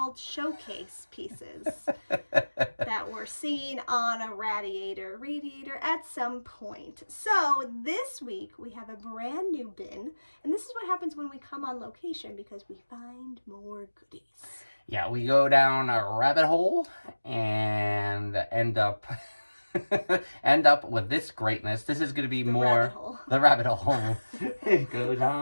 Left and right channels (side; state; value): both; inverted; correlation -1.00